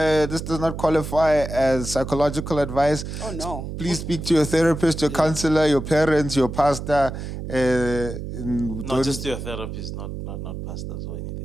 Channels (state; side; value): noise; right; hum, 7 dB below the sound